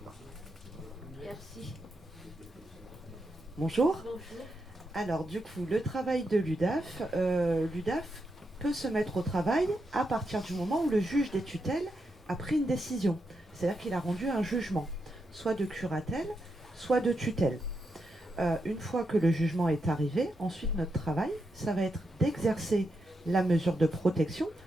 Merci. Bonjour. Bonjour. Alors, du coup, le travail de l'UDAF, l'UDAF peut se mettre au travail à partir du moment où le juge des tutelles a pris une décision. C'est-à-dire qu'il a rendu un jugement, soit de curatelle, soit de tutelle. Une fois que le jugement est arrivé, ensuite notre travail, ça va être d'exercer la mesure de protection,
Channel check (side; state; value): both; normal; correlation 0.84